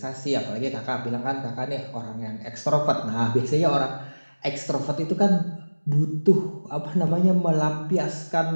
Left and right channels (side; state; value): both; inverted; correlation -1.00